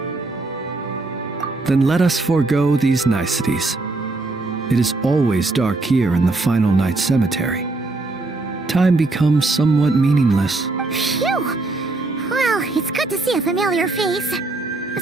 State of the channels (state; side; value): quieter; left; 3.2 dB